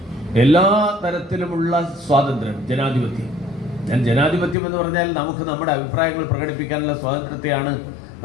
എല്ലാ തരത്തിലുമുള്ള സ്വാതന്ത്ര്യം, ജനാധിപത്യം. ഞാൻ ജനാധിപത്യം എന്ന് പറഞ്ഞാൽ നമുക്ക് നമ്മുടെ അഭിപ്രായങ്ങൾ പ്രകടിപ്പിക്കാനുള്ള സ്വാതന്ത്ര്യത്തെയാണ്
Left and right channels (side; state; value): right; drops out; at 4.5 s